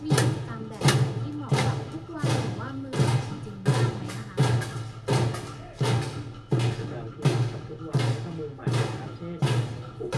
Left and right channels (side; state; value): both; identical; correlation 1.00